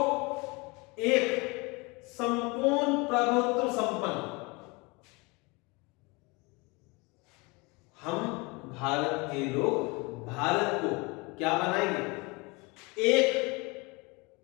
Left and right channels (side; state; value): right; quieter; 27.0 dB